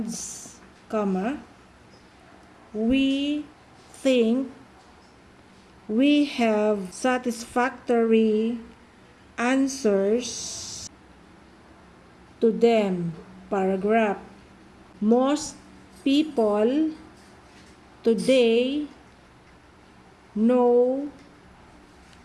we think we have satisfactory answers to them. Paragraph. Most people today know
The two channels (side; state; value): both; identical; correlation 1.00